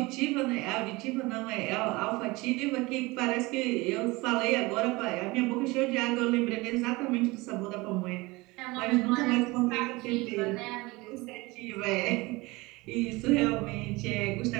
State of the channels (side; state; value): left; quieter; 22.9 dB